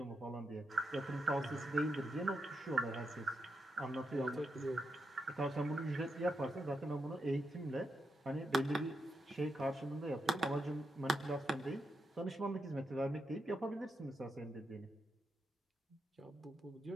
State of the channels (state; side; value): normal; both; correlation 0.84